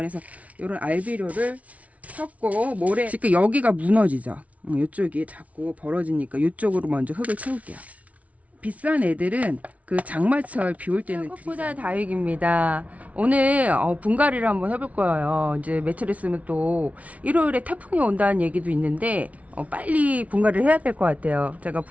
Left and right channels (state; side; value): late; left; 0.067 ms